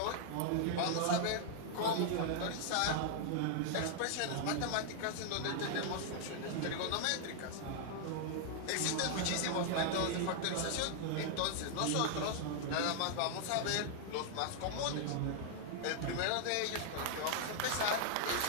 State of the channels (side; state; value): both; different; correlation -0.01